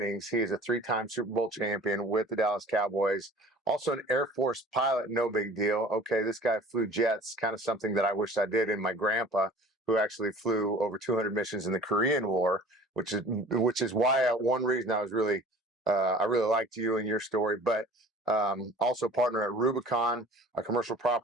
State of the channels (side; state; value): both; normal; correlation 0.45